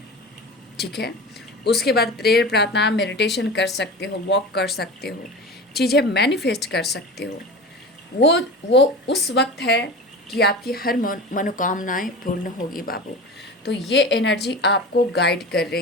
ठीक है, उसके बाद प्रेयर, प्रार्थना, मेडिटेशन कर सकते हो, वॉक कर सकते हो, चीज़ें मैनिफेस्ट कर सकते हो। वो उस वक्त है कि आपकी हर मनोकामनाएं पूर्ण होगी बाबू। तो ये एनर्जी आपको गाइड कर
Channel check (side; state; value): both; normal; correlation 0.32